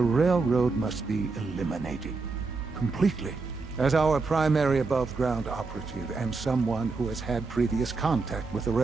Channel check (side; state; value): left; quieter; 4.1 dB